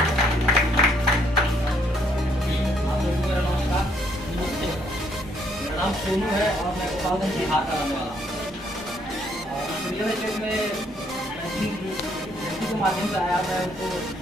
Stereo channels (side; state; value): both; normal; correlation 0.69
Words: नाम सोनू है और मैं गोपालगंज बिहार का रहने वाला हूँ। और रियल एस्टेट में के माध्यम से आया, मैं उनको